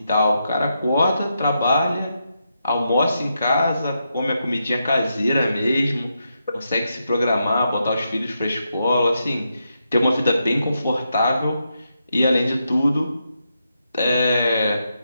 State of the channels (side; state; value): both; inverted; correlation -0.83